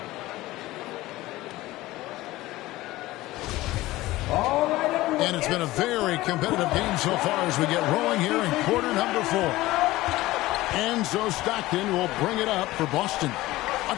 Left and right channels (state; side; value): quieter; right; 17.9 dB